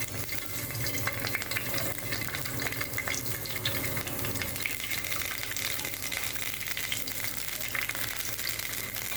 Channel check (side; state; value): left; noise; hum, 13 dB below the sound